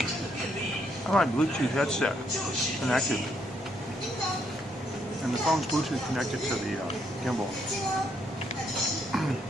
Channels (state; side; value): normal; both; correlation 0.73